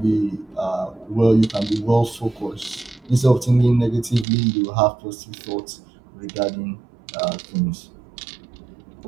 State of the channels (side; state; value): left; drops out; at 4.2 s